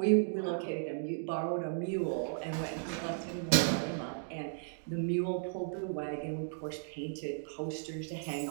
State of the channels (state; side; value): silent; left; digital silence